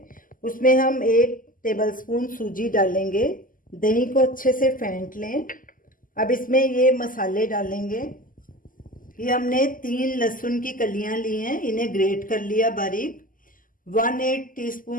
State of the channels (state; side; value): late; right; 0.40 ms